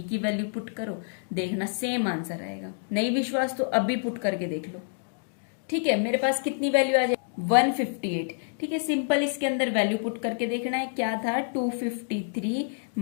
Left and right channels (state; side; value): silent; right; digital silence